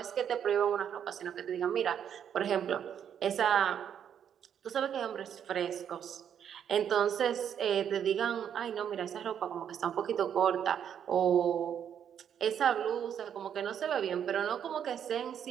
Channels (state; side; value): quieter; left; 8.8 dB